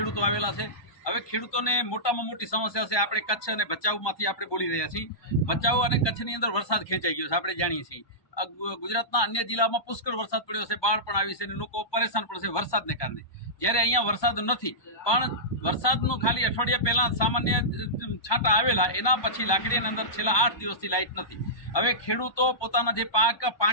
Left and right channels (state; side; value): late; right; 1.2 ms